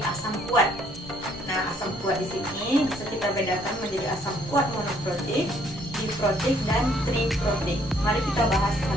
asam kuat. Nah, asam kuat di sini bisa kita bedakan menjadi asam kuat monoprotik, diprotik, dan triprotik. Mari kita bahas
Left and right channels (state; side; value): normal; both; correlation 0.65